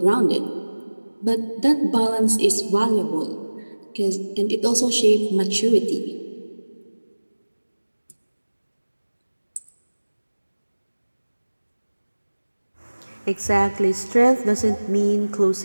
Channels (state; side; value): inverted; both; correlation -1.00